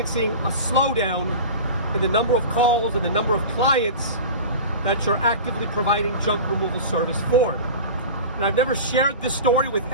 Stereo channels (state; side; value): inverted; both; correlation -0.33